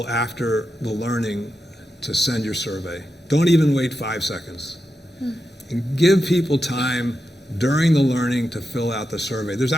after the learning to send your survey. Don't even wait 5 seconds. And give people time during the learning to fill out the survey. There's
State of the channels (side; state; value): both; normal; correlation 0.88